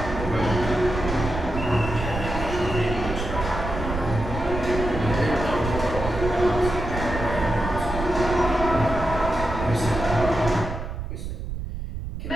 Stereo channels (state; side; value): noise; right; rumble, 6 dB below the sound